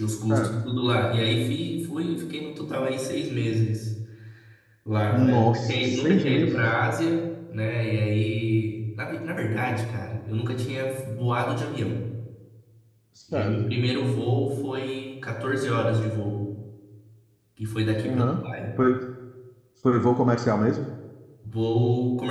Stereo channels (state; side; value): identical; both; correlation 1.00